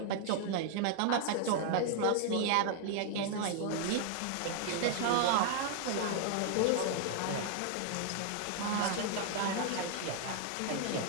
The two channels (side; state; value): both; different; correlation 0.00